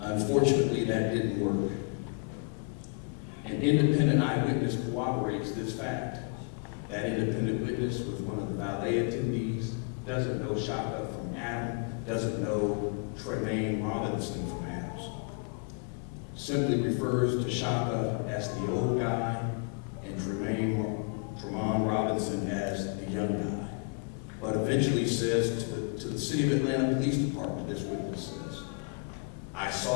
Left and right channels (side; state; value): right; quieter; 38.3 dB